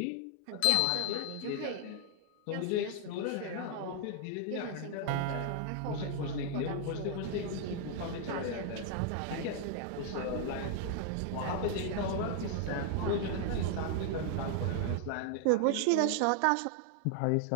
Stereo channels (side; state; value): both; different; correlation 0.00